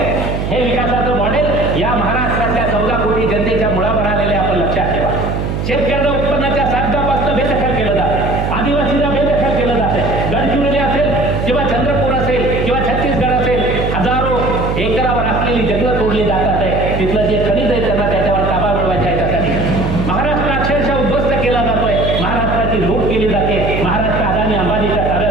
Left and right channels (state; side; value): noise; right; hum, 2 dB below the sound